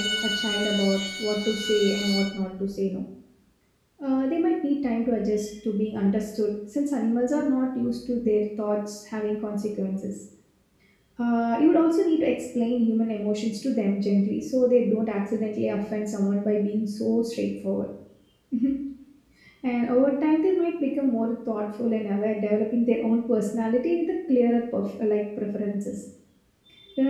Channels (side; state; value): both; identical; correlation 1.00